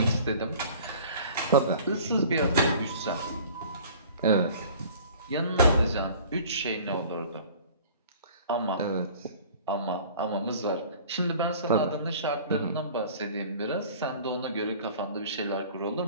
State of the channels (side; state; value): both; inverted; correlation -0.47